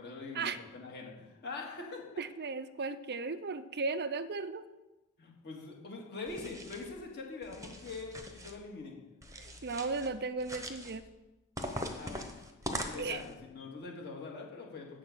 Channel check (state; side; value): normal; both; correlation -0.04